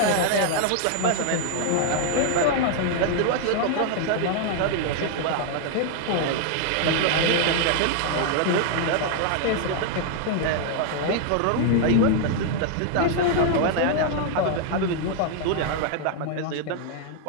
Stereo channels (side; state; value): both; different; correlation 0.00